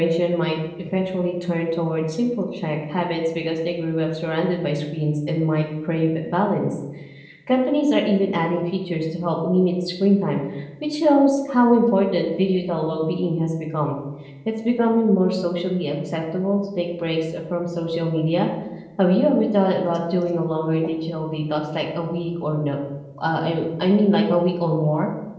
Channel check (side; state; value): both; identical; correlation 1.00